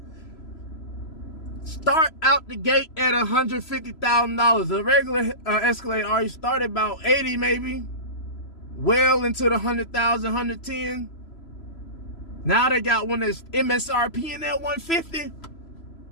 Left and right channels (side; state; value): right; late; 3.0 ms